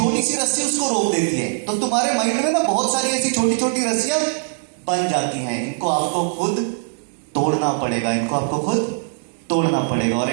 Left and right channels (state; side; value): silent; left; digital silence